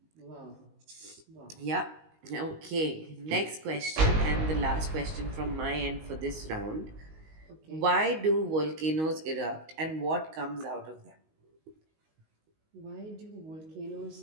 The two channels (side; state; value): left; late; 19 ms